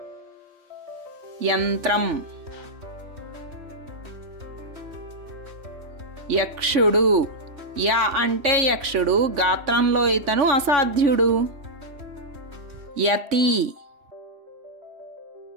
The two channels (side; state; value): left; late; 3.1 ms